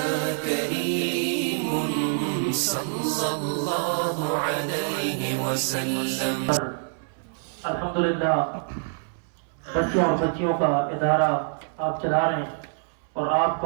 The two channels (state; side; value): silent; left; 61 dB below the other